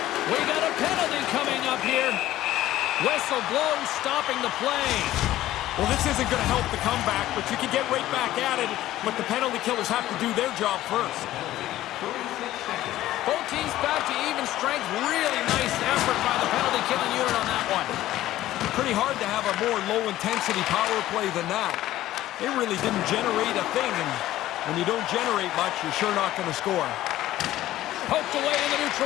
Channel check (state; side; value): quieter; right; 14.6 dB